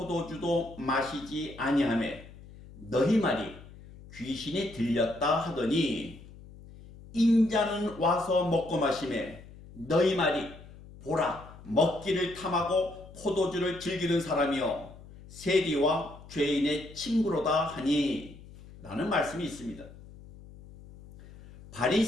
마시지 아니하매 너희 말이 귀신이 들렸다 하더니 인자는 와서 먹고 마시매 너희 말이 보라 먹기를 탐하고 포도주를 즐기는 사람이여 세리와 죄인의 친구로다 하니 라는 말씀이 있습니다.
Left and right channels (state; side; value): noise; left; hum, 19 dB below the sound